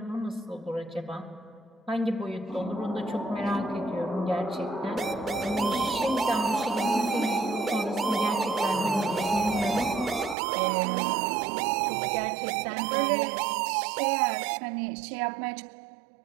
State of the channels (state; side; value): drops out; left; at 10.4 s